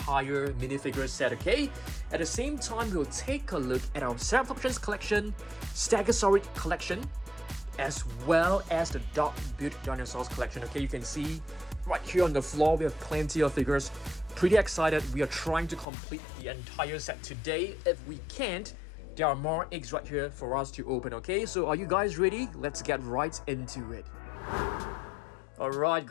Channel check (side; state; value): right; drops out; at 15.9 s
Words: minifigure set. Okay, at the same time, we'll take a look at our Ceratops collection, Stegosaurus collection, as well as the Dog Built Dinosaurs collection. Okay, you can see right here on the floor we have plenty of figures. Pretty excited. We are trying to complete the entire set today. If we can't, there are more eggs right here for us to open. Okay, so are you guys ready? Let's get right into it. Alright